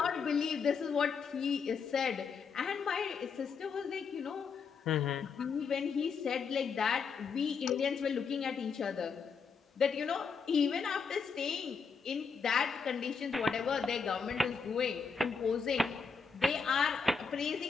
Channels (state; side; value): quieter; right; 5.6 dB